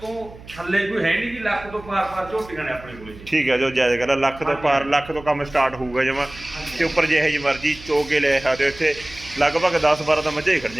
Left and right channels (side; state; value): right; noise; hum, 18 dB below the sound